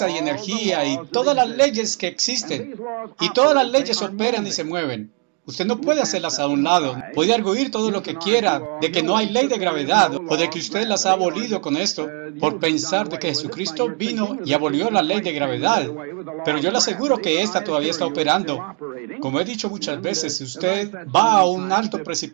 y energía y todas las leyes que existen. Y todas las leyes operan y se mueven. Usted no puede hacerlas a un lado. Puede arguir todo lo que quiera de que no hay ley de gravedad o de que usted las ha abolido con esto por pensar de que Jesucristo vino y abolió la ley de gravedad. Pero yo le aseguro que esta todavía está operando. Como he dicho muchas veces, si usted va a un alto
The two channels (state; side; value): quieter; left; 40.0 dB